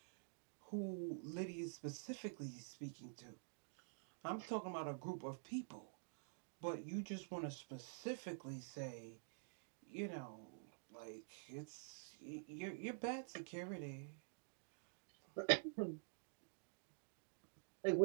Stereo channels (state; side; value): silent; left; digital silence